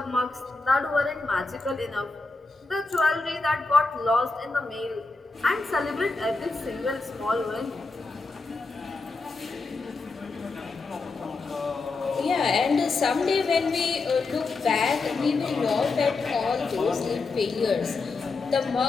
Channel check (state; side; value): quieter; right; 3.8 dB